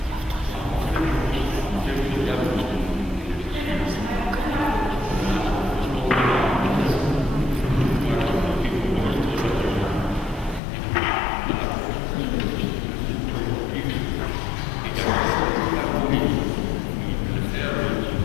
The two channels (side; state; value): right; drops out; at 10.6 s